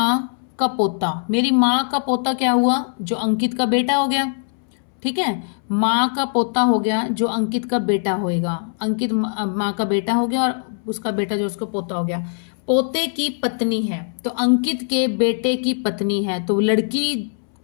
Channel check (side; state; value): right; silent; 65 dB below the other